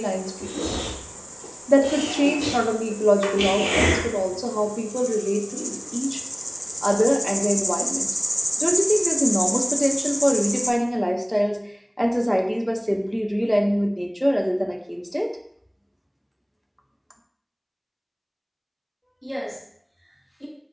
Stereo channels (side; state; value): both; identical; correlation 1.00